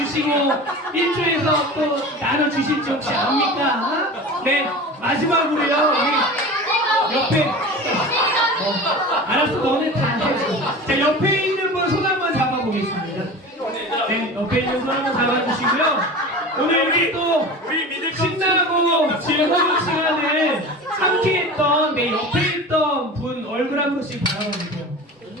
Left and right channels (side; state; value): both; normal; correlation 0.34